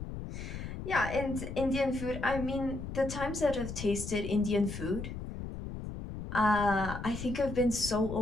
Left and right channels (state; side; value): noise; left; rumble, 8 dB below the sound